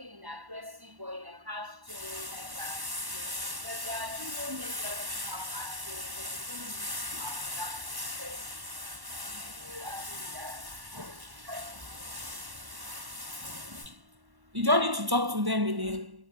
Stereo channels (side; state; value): left; late; 1.1 ms